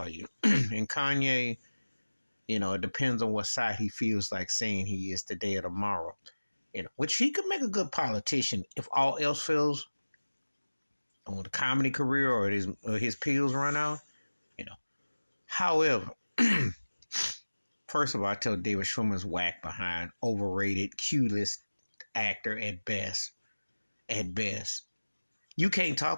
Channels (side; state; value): both; inverted; correlation -1.00